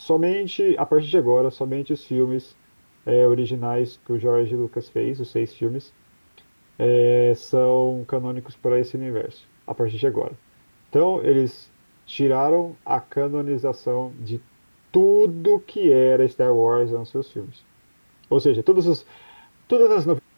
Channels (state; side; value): inverted; both; correlation -1.00